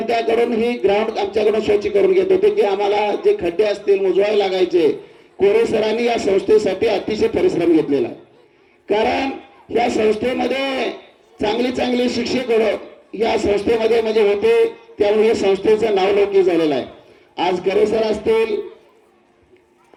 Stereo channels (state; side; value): identical; both; correlation 1.00